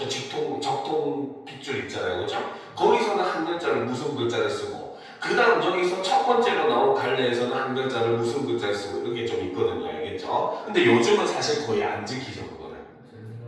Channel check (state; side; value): identical; both; correlation 1.00